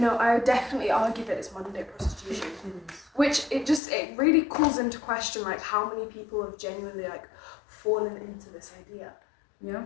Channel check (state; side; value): drops out; right; at 3.8 s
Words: I would definitely argue that it's modern day prostitution. Which it really calls into question like how many people have genuinely like fallen into this idea. Yeah.